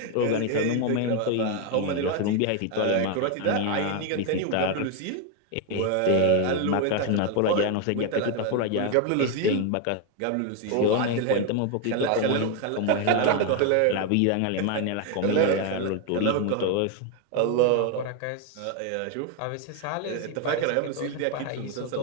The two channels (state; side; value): different; both; correlation 0.01